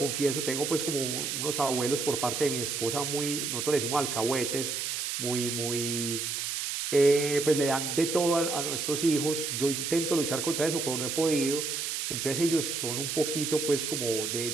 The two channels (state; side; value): noise; right; hiss, 2 dB below the sound